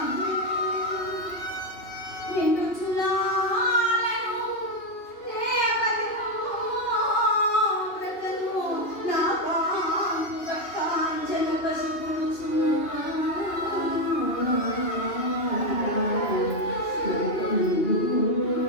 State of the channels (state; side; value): late; right; 2.9 ms